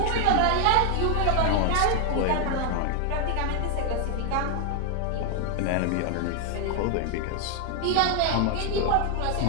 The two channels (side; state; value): both; different; correlation 0.00